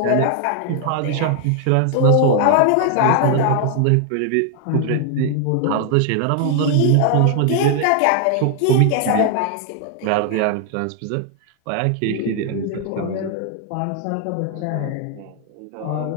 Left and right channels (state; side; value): different; both; correlation 0.00